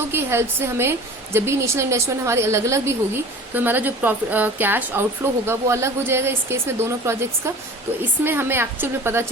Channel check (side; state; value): both; normal; correlation 0.41